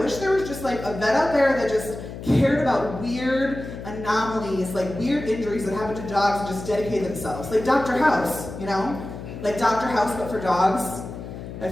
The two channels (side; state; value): left; noise; hum, 10 dB below the sound